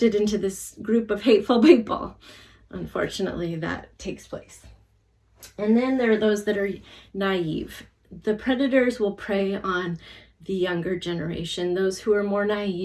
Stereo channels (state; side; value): identical; both; correlation 1.00